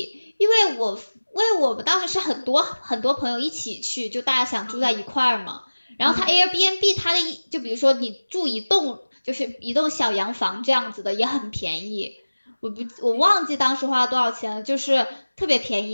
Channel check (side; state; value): both; inverted; correlation -1.00